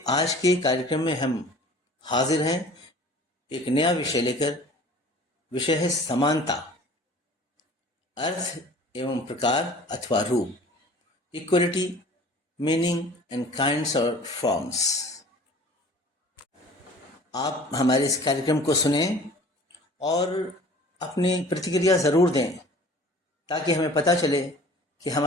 आज के कार्यक्रम में हम हाजिर हैं एक नया विषय लेकर। विषय है समानता, अर्थ एवं प्रकार अथवा रूप, इक्वलिटी, मीनिंग एंड काइंड्स और फॉर्म्स। आप हमारे इस कार्यक्रम को सुने और अपनी प्रतिक्रिया ज़रूर दें ताकि हमें पता चले कि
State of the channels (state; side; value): normal; both; correlation 0.46